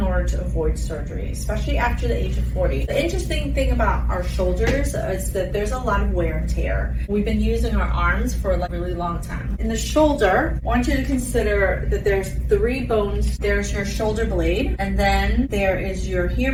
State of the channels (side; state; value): both; identical; correlation 1.00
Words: order to avoid surgery, especially after the age of 40. The interesting thing about our shoulders is that there's a lot of wear and tear. We've been using our arms for a really long time. In the shoulder, I want you to consider that there's 3 bones. There's your shoulder blade, and then there is your